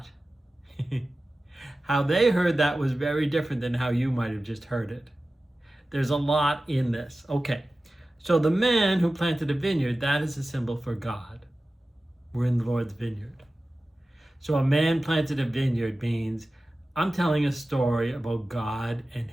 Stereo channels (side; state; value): both; normal; correlation 0.95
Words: how they heard that was very different than how you might have just heard it. There's a lot in this. Okay, so the man who planted a vineyard, that is a symbol for God. We're in the Lord's vineyard. So a man planted a vineyard means I'm telling a story about God and